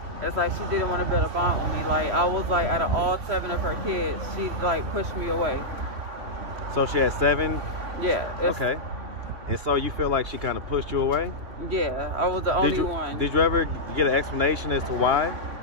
It's like she didn't want to build a bond with me. Like I was like out of all 7 of her kids, she like pushed me away. So she had 7? Yeah. Okay. And so you feel like she kind of pushed you away? Yeah, I was the only one. Did you ever get an explanation as to why?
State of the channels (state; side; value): late; left; 3.1 ms